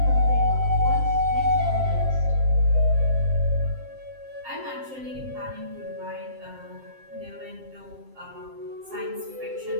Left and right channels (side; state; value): left; late; 7.6 ms